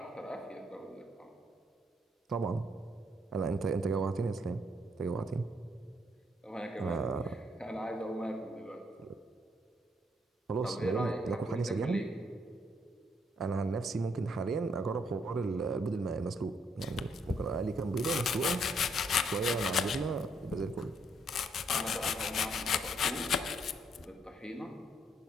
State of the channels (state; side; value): normal; both; correlation 0.71